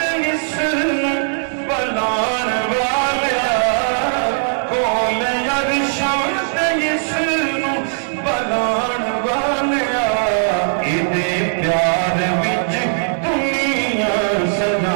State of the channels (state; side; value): silent; left; digital silence